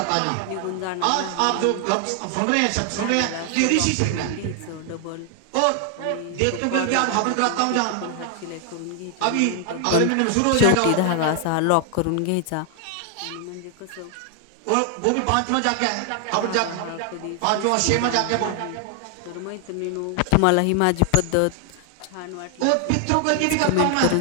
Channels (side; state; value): both; different; correlation 0.00